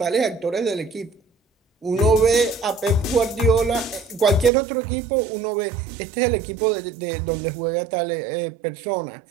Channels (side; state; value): left; drops out; at 4.5 s